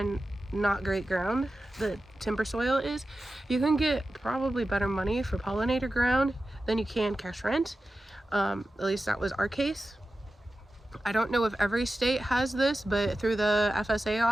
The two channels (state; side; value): normal; both; correlation 0.93